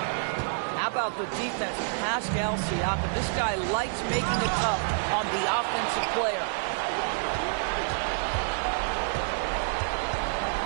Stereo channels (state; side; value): silent; left; digital silence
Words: How about the defense? Pascal Siakam. This guy likes making it tough on the offensive player.